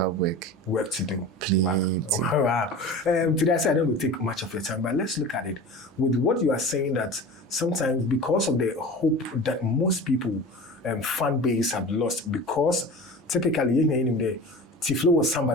work to do. Please. Wow. Today I said I don't go take much of your time, but let's look at it. With what you are saying, that sometimes because of the hope that most people fan base have lost, because typically T-Flow was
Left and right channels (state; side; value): normal; both; correlation 0.35